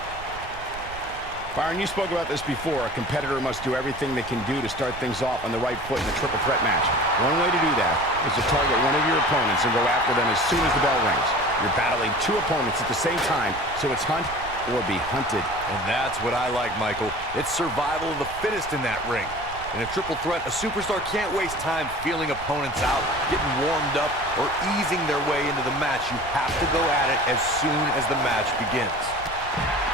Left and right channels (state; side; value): noise; right; rumble, 15 dB below the sound